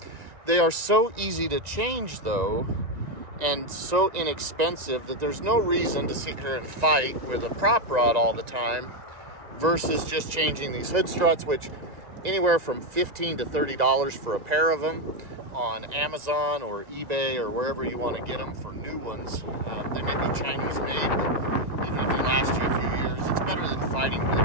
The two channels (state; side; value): late; left; 1.9 ms